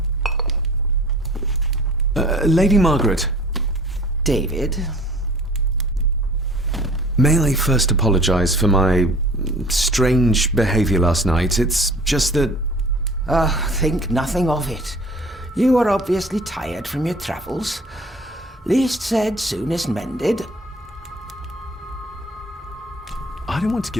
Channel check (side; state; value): both; normal; correlation 0.47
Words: Lady Margaret. David? May I first apologize for my strange behavior last night? It's just that... Think nothing of it. You are obviously tired from your travels. Least said, soonest mended. I don't want to